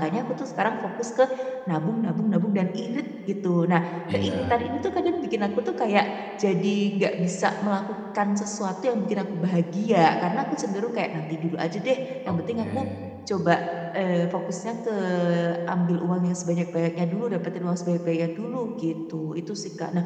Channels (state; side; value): identical; both; correlation 1.00